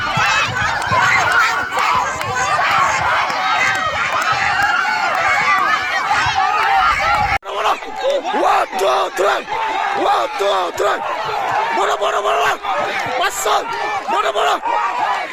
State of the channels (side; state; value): both; identical; correlation 1.00